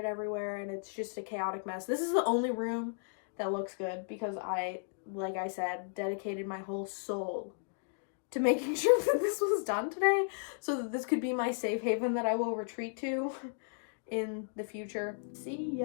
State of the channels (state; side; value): silent; right; digital silence